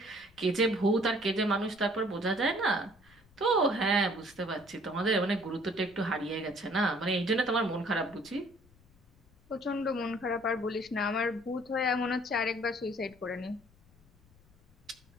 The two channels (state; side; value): noise; left; rumble, 29 dB below the sound